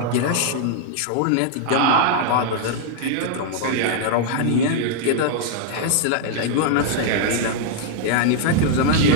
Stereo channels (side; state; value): both; different; correlation -0.01